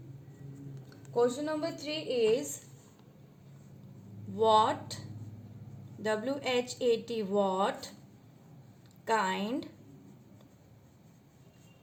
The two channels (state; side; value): identical; both; correlation 1.00